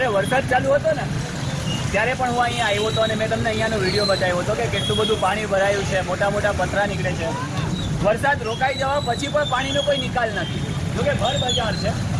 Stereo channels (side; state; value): both; identical; correlation 1.00